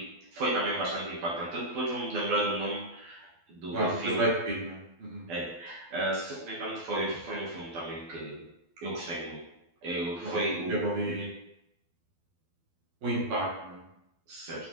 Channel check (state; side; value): late; left; 12 ms